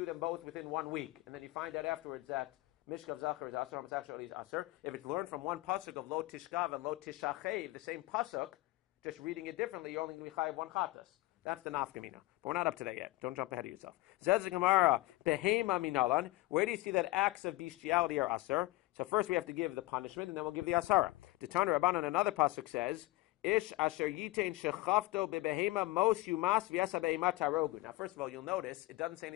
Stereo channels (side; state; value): right; quieter; 19.5 dB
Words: them both within 1 week, and then you find out afterwards that Mishkav Zachar is Asur, homosexuality is Asur. If it's learned from one pasuk of Lo Tishkav and Lo Tishachev, the same pasuk, just reading it differently, you're only going to be chayiv one chatas. That's the nafkamina. But we're not up to that yet. Don't jump ahead of yourself. Zez Gemara, Behema Minalan. Where do you see that acts of bestiality are Asur? So first we have to give the punishment, and then we'll give the Asara. The Tana Rabbanan, another pasuk says, Ish asher yitain shechafto bebehema mos yumas v'yasa behema tarogu. Now first of all, you'll notice, it doesn't say